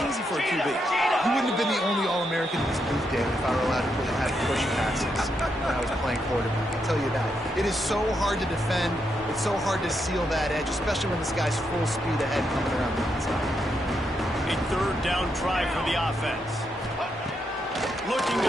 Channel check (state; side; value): normal; both; correlation 0.81